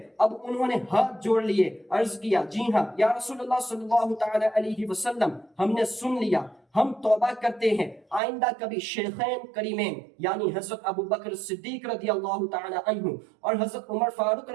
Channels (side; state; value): left; drops out; at 8.2 s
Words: اب انہوں نے ہاتھ جوڑ لیے، عرض کیا جی ہاں یا رسول اللہ صلی اللہ تعالی علیہ وسلم، ہم نے سن لیا، ہم توبہ کرتے ہیں، آئندہ کبھی شیخین کریمین یعنی حضرت ابو بکر صدیق رضی اللہ تعالی عنہ اور حضرت عمر فاروق